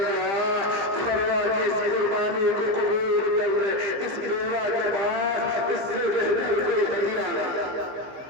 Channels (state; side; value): late; left; 15 ms